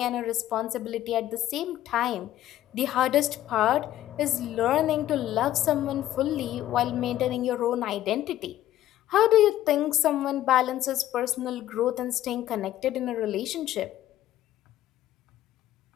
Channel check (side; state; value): right; quieter; 13.4 dB